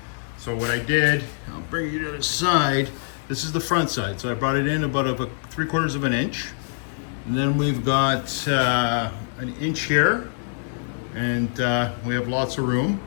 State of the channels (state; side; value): silent; right; digital silence